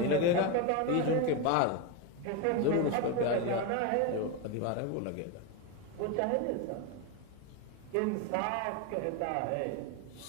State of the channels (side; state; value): both; different; correlation 0.03